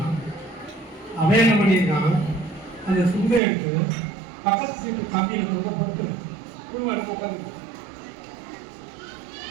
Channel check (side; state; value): left; drops out; at 3.4 s